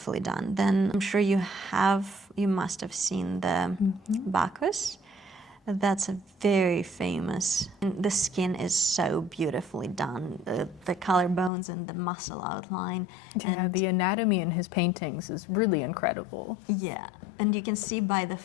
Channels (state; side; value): drops out; right; at 11.5 s